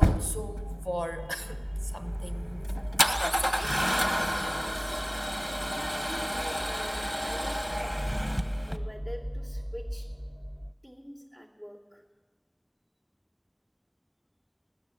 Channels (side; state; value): both; identical; correlation 1.00